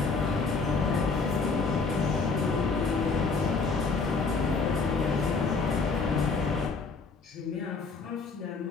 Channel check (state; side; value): quieter; right; 4.3 dB